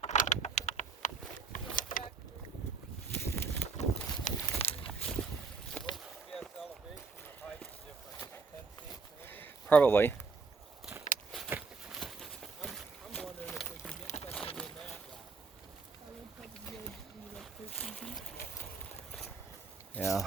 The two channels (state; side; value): quieter; left; 4.8 dB